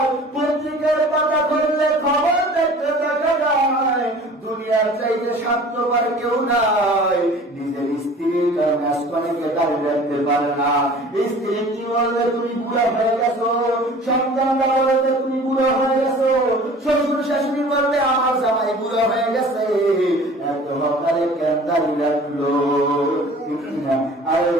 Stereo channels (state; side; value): normal; both; correlation 0.45